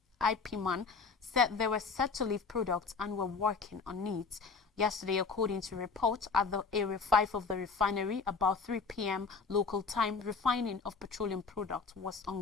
(IPMAN) said they were set to leave products and were working on it. Yesterday, according to reports, at the Area 5 of the refinery, about 3 p.m. local time, refining of petroleum products was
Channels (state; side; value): quieter; right; 4.8 dB